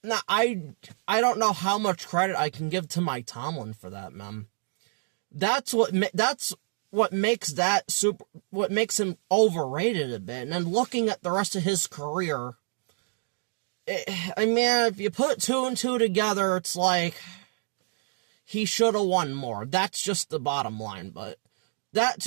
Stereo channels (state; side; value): silent; left; digital silence